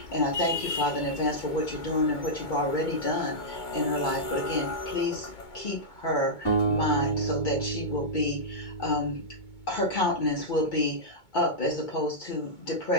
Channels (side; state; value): right; late; 2.2 ms